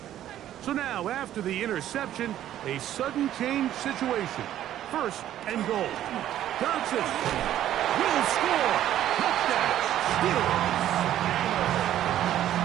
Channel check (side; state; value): left; quieter; 12.0 dB